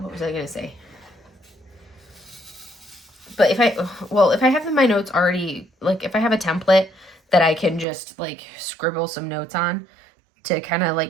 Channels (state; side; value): drops out; left; at 7.9 s